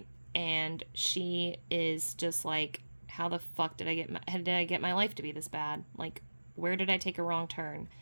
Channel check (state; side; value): inverted; both; correlation -1.00